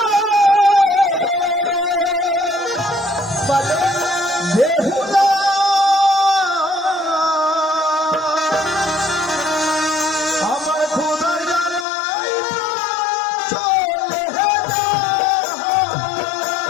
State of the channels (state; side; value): drops out; right; at 11.9 s